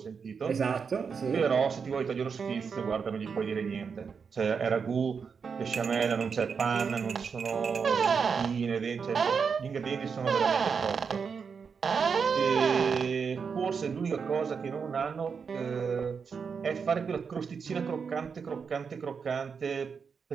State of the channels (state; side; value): quieter; left; 5.9 dB